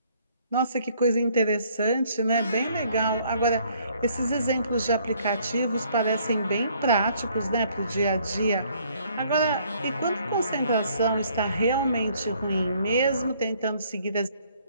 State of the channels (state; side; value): inverted; both; correlation -0.63